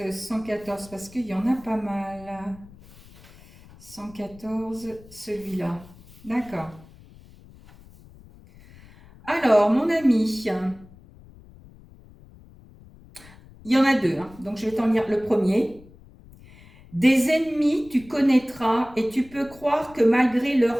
114? Parce qu'il y en a pas mal. 114, celui-là. D'accord. Alors, mon ami, il y en a deux, hein, donc je vais t'en lire le premier. Des ennemis tu connaîtras et tu peux croire que malgré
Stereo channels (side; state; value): left; noise; rumble, 23 dB below the sound